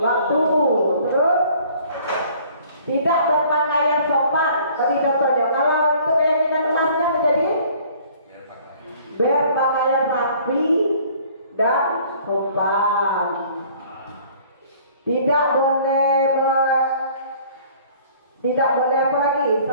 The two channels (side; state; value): both; inverted; correlation -0.54